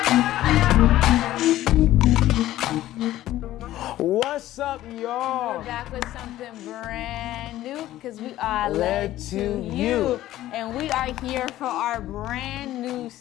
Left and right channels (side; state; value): right; quieter; 14.4 dB